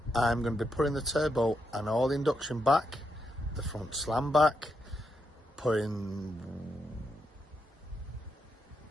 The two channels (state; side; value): normal; both; correlation 0.82